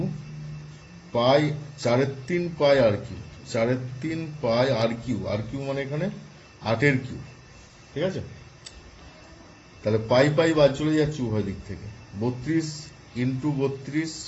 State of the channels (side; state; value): both; identical; correlation 1.00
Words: pi 3 pi r cube, 3 pi r cube মানে এখানে 8 কিউ, ঠিক আছে। তাহলে পাই পাই বাদ চলে যাচ্ছে উভয় দিক থেকে, 32 into 32